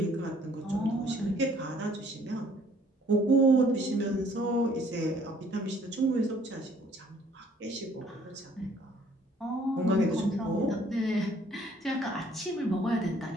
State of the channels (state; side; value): normal; both; correlation 0.60